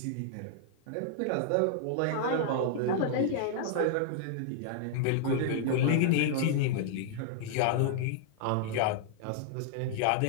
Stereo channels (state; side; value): different; both; correlation -0.01